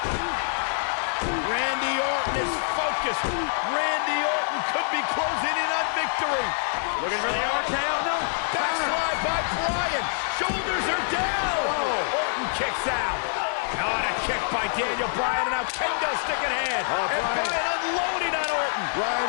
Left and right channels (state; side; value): silent; right; digital silence